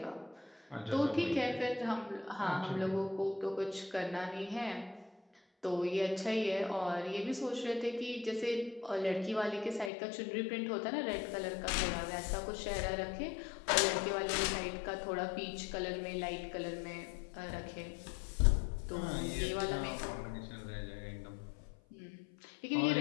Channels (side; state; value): right; drops out; at 9.9 s